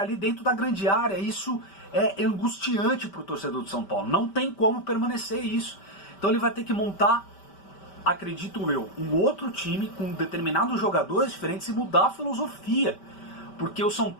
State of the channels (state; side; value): late; right; 5.1 ms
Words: ali dentro da grande área. Isso é angustiante para o torcedor do São Paulo, não tem como permanecer isso. Então ele vai ter que montar, acredito eu, um outro time com determinados jogadores diferentes e mudar a filosofia, porque o São